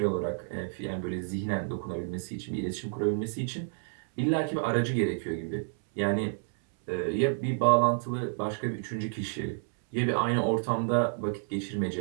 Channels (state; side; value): silent; left; 58 dB below the other